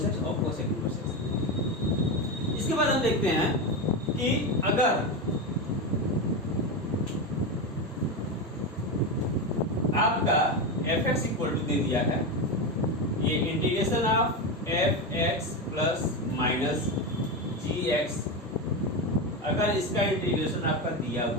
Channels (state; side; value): normal; both; correlation 0.15